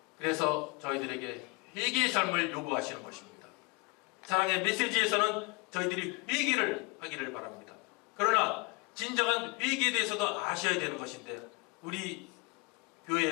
그래서 저희들에게 회개의 삶을 요구하시는 것입니다. 사랑의 메시지에서는 저희들이 회개를 하기를 바랍니다. 그러나 진정한 회개에 대해서도 아셔야 되는 것인데 우리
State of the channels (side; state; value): right; quieter; 28.5 dB